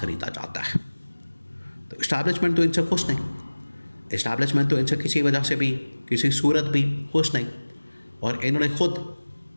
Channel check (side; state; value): both; inverted; correlation -1.00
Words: जाता है। तो इस्टेब्लिशमेंट तो इनसे खुश नहीं, इस्टेब्लिशमेंट तो इनसे किसी वजह से भी, किसी सूरत भी खुश नहीं। और इन्होंने ख़ुद